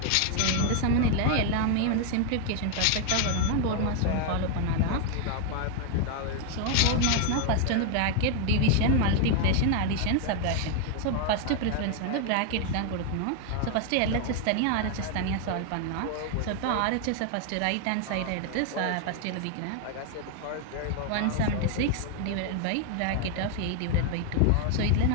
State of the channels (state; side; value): different; both; correlation 0.00